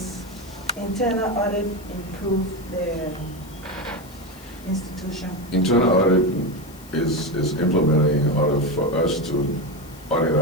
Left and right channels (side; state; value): left; noise; hiss, 22 dB below the sound